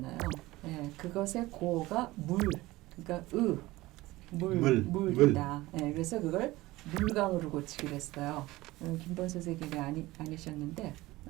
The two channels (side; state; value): left; quieter; 19.0 dB